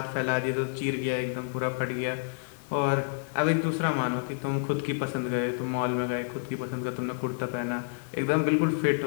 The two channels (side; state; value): right; silent; 59 dB below the other